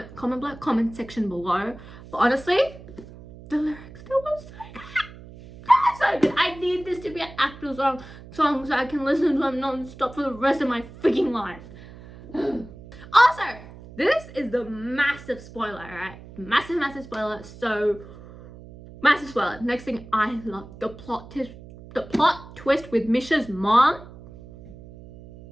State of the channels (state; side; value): noise; right; hum, 17 dB below the sound